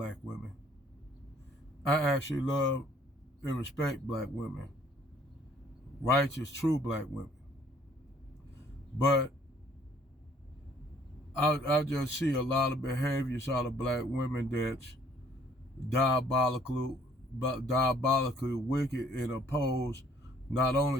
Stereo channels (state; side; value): normal; both; correlation 0.60